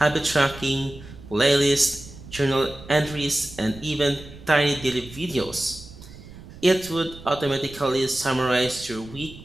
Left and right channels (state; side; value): noise; right; rumble, 17 dB below the sound